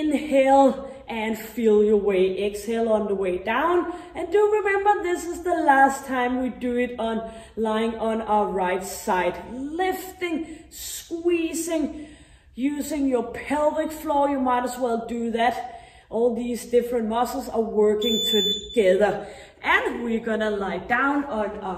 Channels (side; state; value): both; identical; correlation 1.00